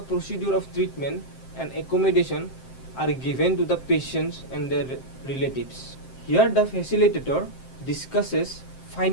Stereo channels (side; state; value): right; late; 7.6 ms